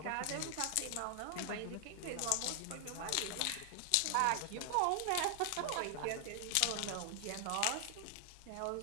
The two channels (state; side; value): different; both; correlation 0.00